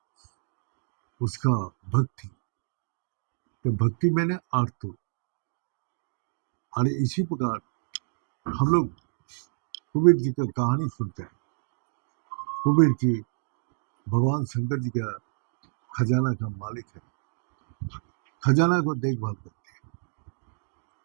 उसका भक्ति, तो भक्ति मैंने आर्त। और इसी प्रकार हम लोग कुबेर जी का कहानी सुनते हैं। कुबेर जी भगवान शंकर जी का खजाना का मालिक है, खजाना को देखभाल करते हैं।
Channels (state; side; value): silent; left; digital silence